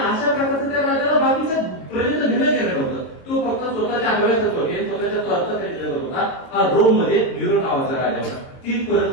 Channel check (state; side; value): late; right; 22 ms